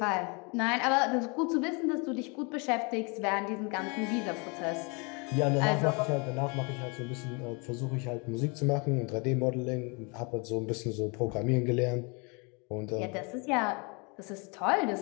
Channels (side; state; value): right; quieter; 31.9 dB